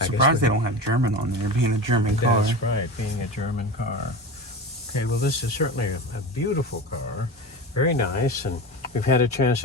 surprised they don't have German on there, being a German car. That's right, being a German car. Okay, well, this is certainly a beautiful car. Very nice, and we've had a chance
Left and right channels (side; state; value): both; normal; correlation 0.27